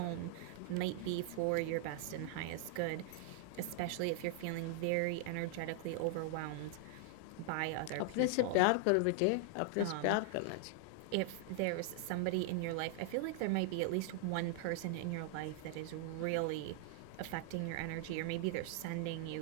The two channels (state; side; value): different; both; correlation -0.01